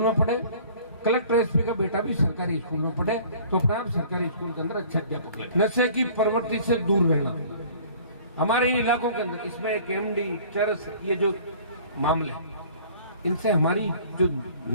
में पढ़े, कलेक्टर एसपी का बेटा भी सरकारी स्कूल में पढ़े, तो अपने आप सरकारी स्कूल के अंदर अच्छे अध्यापक लगे। नशे की प्रवृत्ति से दूर रहना हमारे इन इलाकों के अंदर, इसमें एक एमडी, चरस, ये जो मामले, इनसे हमारी जो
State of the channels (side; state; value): both; inverted; correlation -0.50